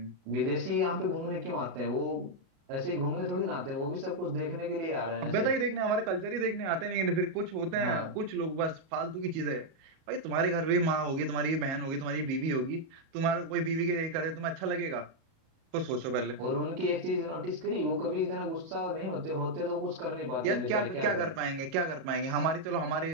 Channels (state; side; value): late; left; 37 ms